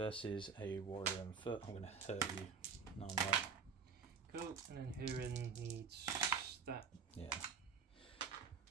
a warrior on foot. I'm gonna hurt you. No, I'm right. Cool. And then Hurin needs that. Yeah.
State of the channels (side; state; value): left; quieter; 5.9 dB